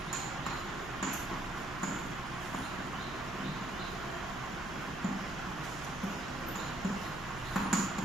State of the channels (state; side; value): noise; right; hum, 13 dB below the sound